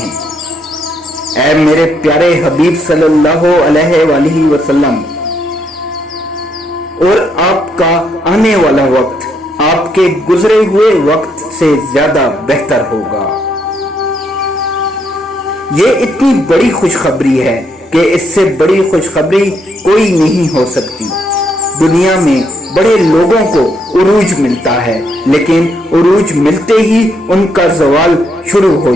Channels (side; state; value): both; normal; correlation 0.75